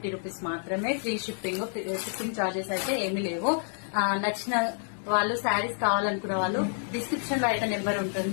రూపీస్ మాత్రమే. ఫ్రీ షిప్పింగ్ చార్జెస్ అయితే ఏమీ లేవు. నచ్చిన వాళ్ళు శారీస్ కావాలనుకున్న వాళ్ళు డిస్క్రిప్షన్ లో అయితే నెంబర్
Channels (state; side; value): silent; right; digital silence